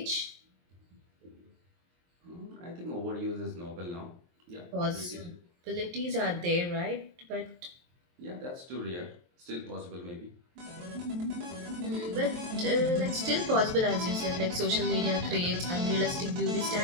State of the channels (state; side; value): late; left; 23 ms